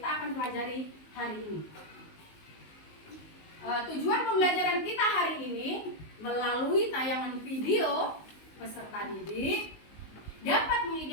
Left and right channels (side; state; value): right; late; 19 ms